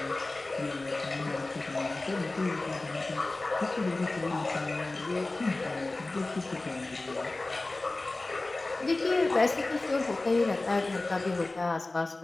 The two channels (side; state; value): right; quieter; 3.1 dB